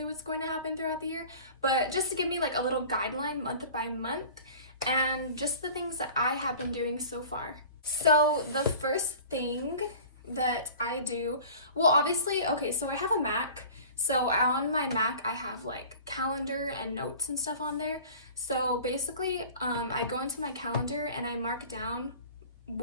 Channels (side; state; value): both; inverted; correlation -0.43